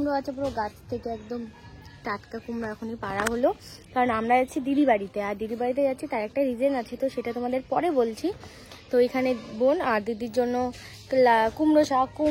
আছে, পুরো গাছ থেকে একদম টাটকা কুমড়ো এখনই পাড়া হলো। কারণ আমরা যাচ্ছি দিদি বাড়িতে, আর দিদি বাড়িতে যাচ্ছি তার একটা রিজন আছে, তো সেটা তোমাদের পরে বলছি। তো এখানে বোন আর দিদির জন্য কুমড়ো শাক,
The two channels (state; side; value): identical; both; correlation 1.00